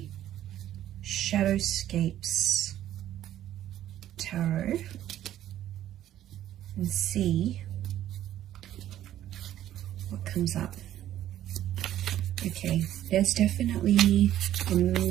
Shadowscapes Tarot and see what comes up. Okay, there's definitely a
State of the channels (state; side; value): quieter; left; 12.3 dB